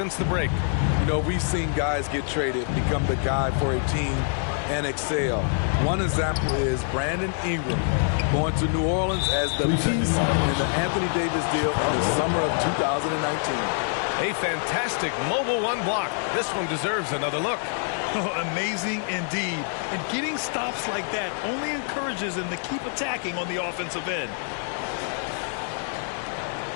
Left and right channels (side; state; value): right; silent; 57 dB below the other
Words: the break. You know, we've seen guys get traded, become the guy for a team, and excel. One example is Brandon Ingram going to New Orleans as the piece in the Anthony Davis deal in the summer of 2019. A fantastic mobile 1 block. This one deserves another look. Amazing indeed. And getting stops like that only encourages him to keep attacking on the offensive end.